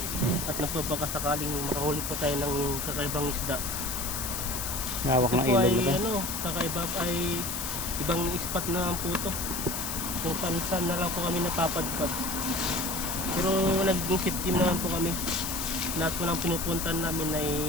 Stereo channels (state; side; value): noise; left; hiss, 4 dB below the sound